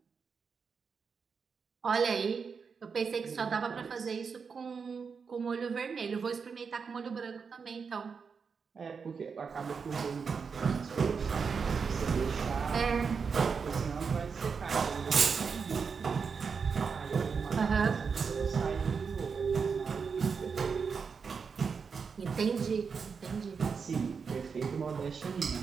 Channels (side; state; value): left; quieter; 5.7 dB